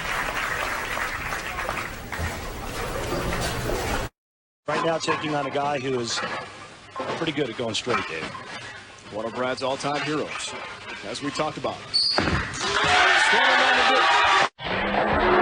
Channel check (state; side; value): identical; both; correlation 1.00